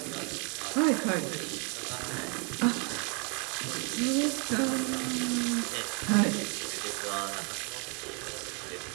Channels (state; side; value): quieter; left; 35.8 dB